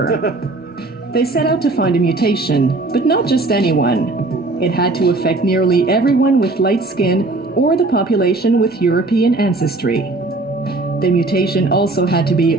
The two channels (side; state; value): left; quieter; 3.1 dB